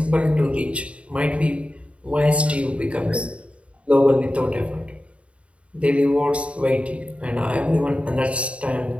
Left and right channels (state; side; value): late; left; 0.062 ms